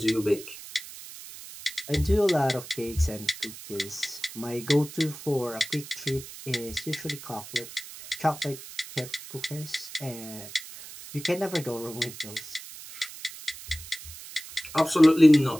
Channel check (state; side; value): noise; right; hiss, 14 dB below the sound